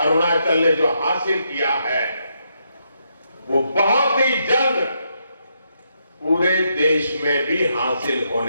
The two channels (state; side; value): inverted; both; correlation -0.79